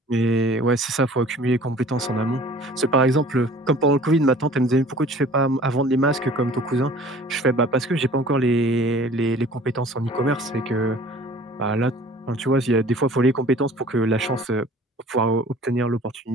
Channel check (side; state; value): both; normal; correlation 0.48